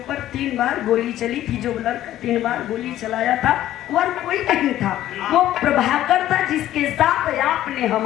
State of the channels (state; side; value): quieter; right; 13.2 dB